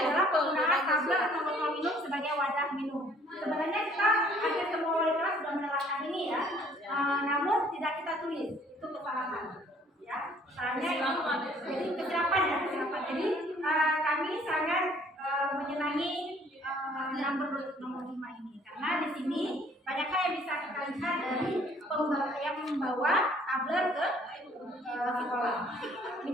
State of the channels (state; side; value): normal; both; correlation 0.59